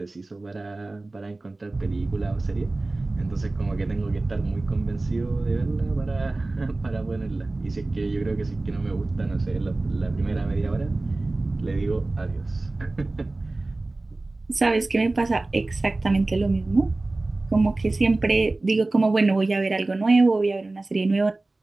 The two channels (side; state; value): left; quieter; 3.1 dB